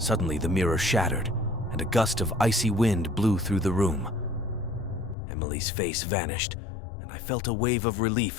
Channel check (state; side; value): drops out; right; at 5.2 s